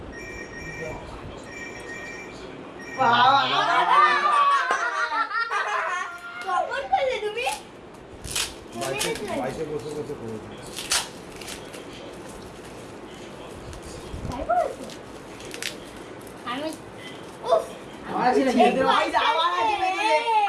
বাবা কখন করলে তুমি বাইশে বছর বছর করে তাই বলছো আমি উফ আমার আছে না খেতে ভাই আবার আছে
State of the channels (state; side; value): identical; both; correlation 1.00